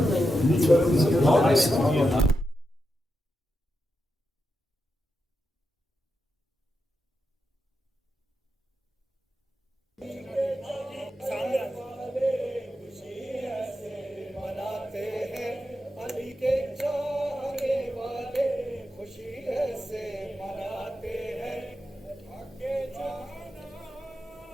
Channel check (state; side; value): normal; both; correlation 0.88